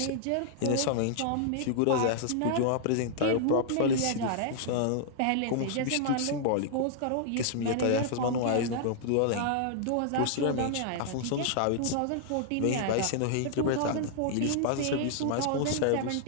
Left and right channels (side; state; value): both; different; correlation -0.01